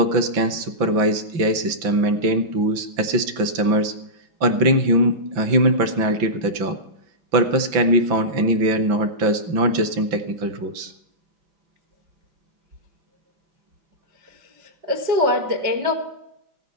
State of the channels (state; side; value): late; left; 5.9 ms